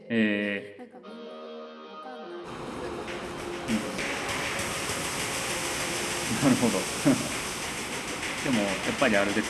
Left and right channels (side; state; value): both; identical; correlation 1.00